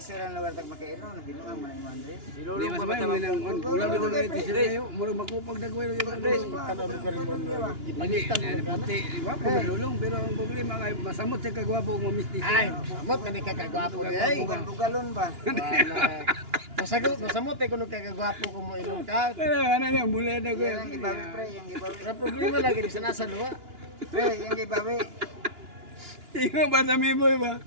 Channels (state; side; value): late; left; 2.9 ms